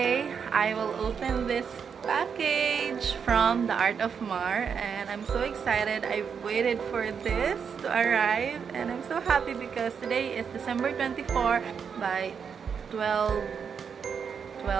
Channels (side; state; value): left; quieter; 6.7 dB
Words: I will open this package from the Art of Mar, and I'm so excited. I've waited for this to arrive, and I'm so happy because today is December 24 by 12